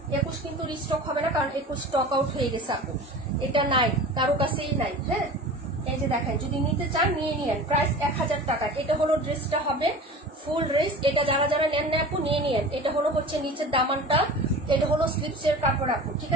21 কিন্তু রিস্টক হবে না, কারণ 21 স্টক আউট হয়ে গেছে আপু, এটা নাই কারো কাছেই নাই। হ্যাঁ এই যে দেখেন যদি নিতে চান নিয়ে নিয়েন, প্রাইস 1000 টাকা। এটা হলো ড্রেসটা হবে ফুল ড্রেস, এটা যারা যারা নেন না আপু নিয়ে নিয়েন। এটা হলো হচ্ছে নিচের দামানটা, এটা হলো স্লিপসের কাপড় আপু, ঠিক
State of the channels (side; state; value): both; normal; correlation 0.37